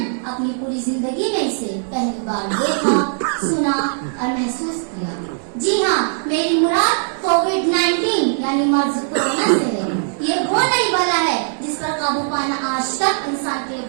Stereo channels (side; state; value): left; silent; digital silence